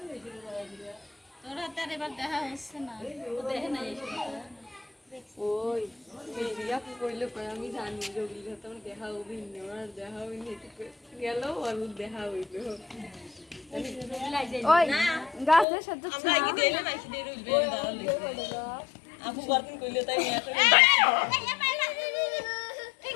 তোর হাতে আর এবার দেখা হচ্ছে না, ও দেখে নাই ওই মেরিয়া কইলো কই আমি জানি জগিল তোমার দেখা হবি না আর দেখা হবি না গেল আর দেখা হইলো ওই গাছের সাথে আমরা কি দেইলে নাকি দেই রইবে দাঁড়ালে আপু বারদিন কইলো তাই নিয়ে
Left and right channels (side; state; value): right; drops out; at 15.7 s